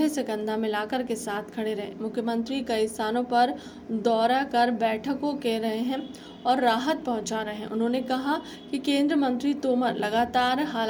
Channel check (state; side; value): identical; both; correlation 1.00